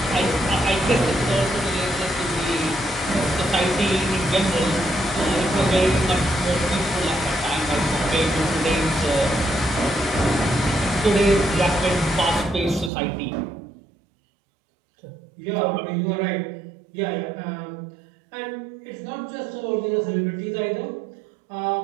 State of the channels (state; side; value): drops out; left; at 12.9 s